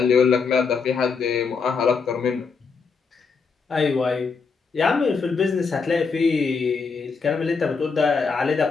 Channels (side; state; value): right; quieter; 5.1 dB